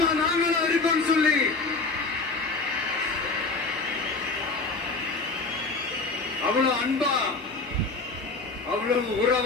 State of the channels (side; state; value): right; quieter; 3.8 dB